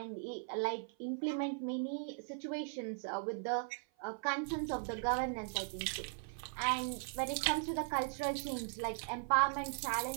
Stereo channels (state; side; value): silent; left; 52 dB below the other